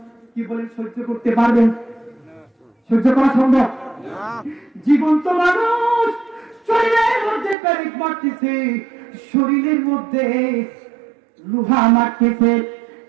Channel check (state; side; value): drops out; left; at 7.6 s